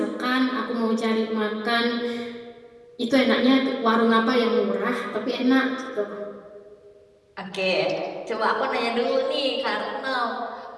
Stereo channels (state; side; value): identical; both; correlation 1.00